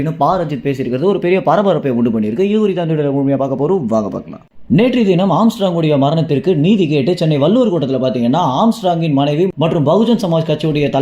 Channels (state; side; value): identical; both; correlation 1.00